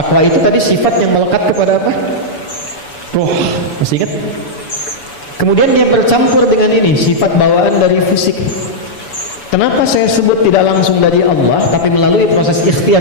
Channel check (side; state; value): right; late; 7.0 ms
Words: itu tadi sifat yang melekat kepada apa? Roh. Masih ingat? Kemudian dia bercampur dengan ini, sifat bawaan dari fisik. Kenapa saya sebut tidak langsung dari Allah tapi melalui proses